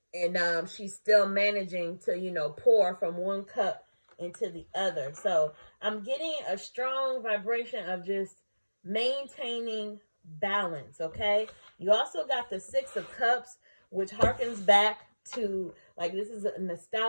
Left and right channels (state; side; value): inverted; both; correlation -1.00